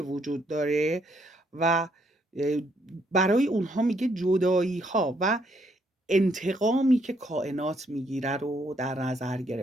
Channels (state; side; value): normal; both; correlation 0.71